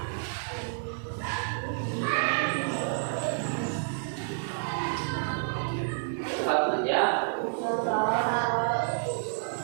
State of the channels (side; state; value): left; silent; digital silence